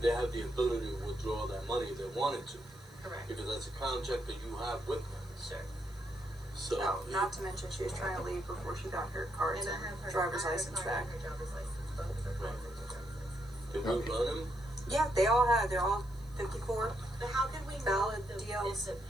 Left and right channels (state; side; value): noise; right; hiss, 27 dB below the sound